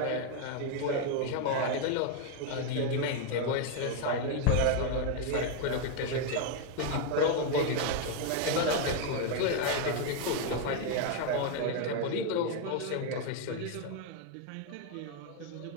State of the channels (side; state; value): both; different; correlation 0.00